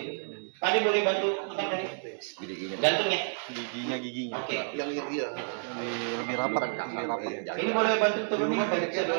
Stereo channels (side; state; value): left; silent; digital silence